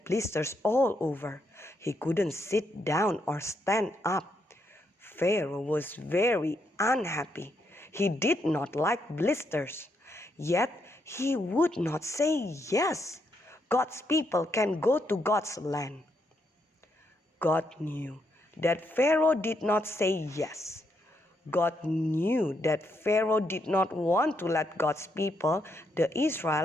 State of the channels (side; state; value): both; normal; correlation 0.78